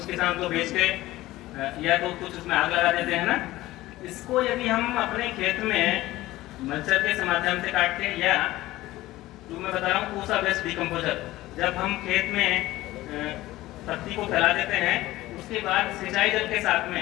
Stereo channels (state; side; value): quieter; right; 17.1 dB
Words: किसान को बेच के या तो कुछ उसमें आग लगा देते हैं ना, इसको यदि हम अपने खेत में मल्चर के माध्यम से काट के, या जो मैं बता रहा हूँ पूसा वेस्ट डिकम्पोजर, जब हम खेत में पत्ती को फैला देते हैं, उसके बाद सिंचाई जल के साथ